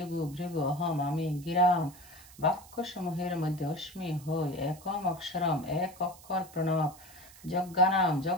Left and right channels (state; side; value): noise; right; hiss, 21 dB below the sound